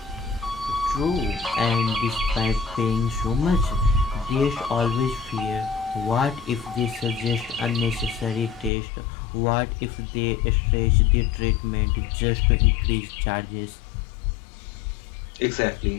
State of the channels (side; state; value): right; drops out; at 8.7 s